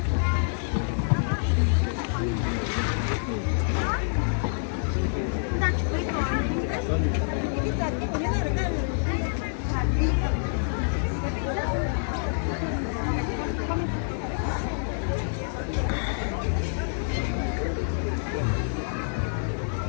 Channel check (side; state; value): right; silent; digital silence